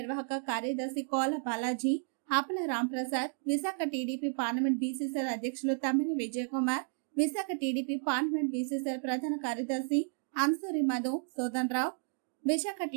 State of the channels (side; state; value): left; silent; 56 dB below the other